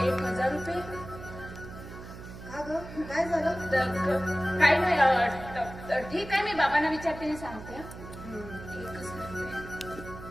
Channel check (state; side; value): noise; right; hum, 13 dB below the sound